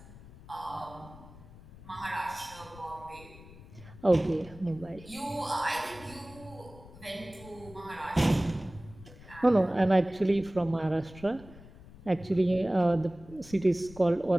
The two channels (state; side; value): noise; left; rumble, 19 dB below the sound